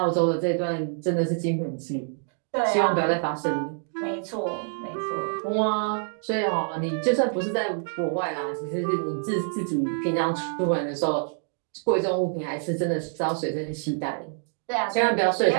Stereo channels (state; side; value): silent; left; 61 dB below the other